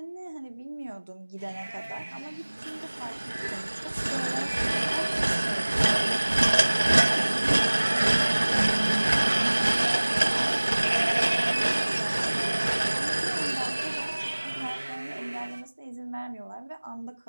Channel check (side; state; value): both; inverted; correlation -1.00